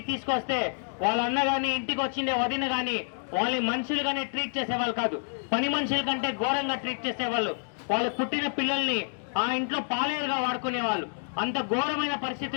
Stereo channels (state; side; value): silent; right; 59 dB below the other